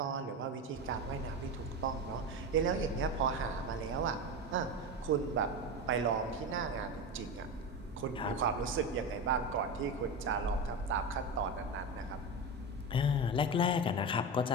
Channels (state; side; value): normal; both; correlation 0.20